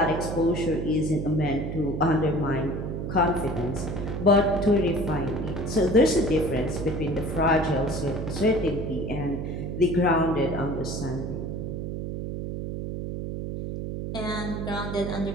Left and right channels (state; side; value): noise; right; hum, 5 dB below the sound